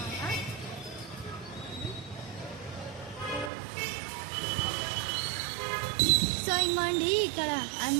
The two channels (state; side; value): drops out; left; at 3.5 s